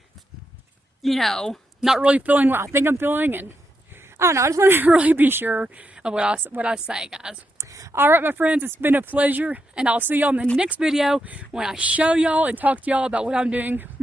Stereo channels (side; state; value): both; normal; correlation 0.83